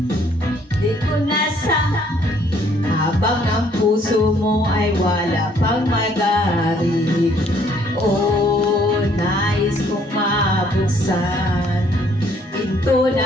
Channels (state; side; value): normal; both; correlation 0.64